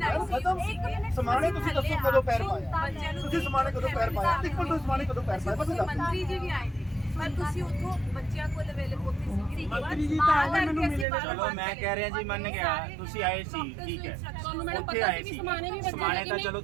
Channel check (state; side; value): drops out; left; at 11.1 s